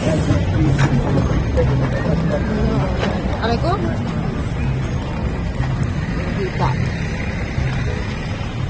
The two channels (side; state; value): both; identical; correlation 1.00